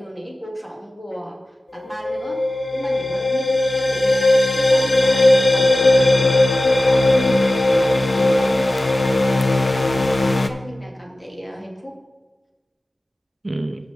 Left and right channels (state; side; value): normal; both; correlation 0.96